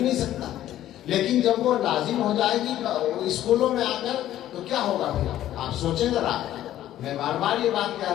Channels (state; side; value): quieter; right; 12.8 dB